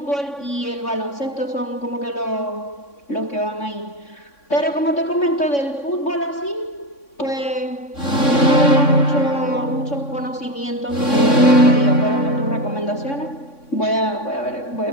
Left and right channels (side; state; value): right; late; 3.6 ms